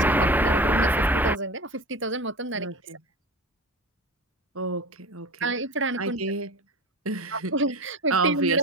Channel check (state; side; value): normal; both; correlation 0.33